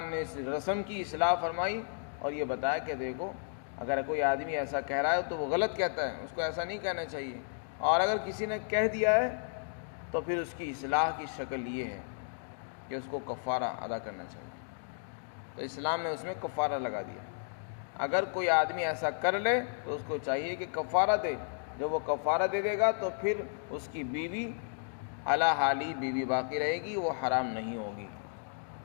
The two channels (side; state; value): right; silent; digital silence